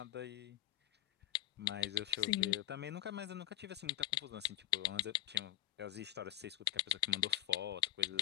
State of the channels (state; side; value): quieter; right; 15.3 dB